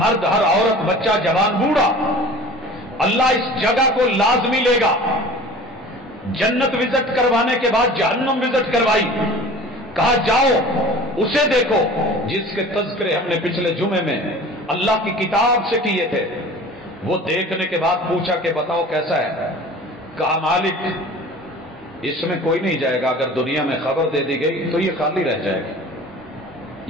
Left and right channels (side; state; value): both; normal; correlation 0.42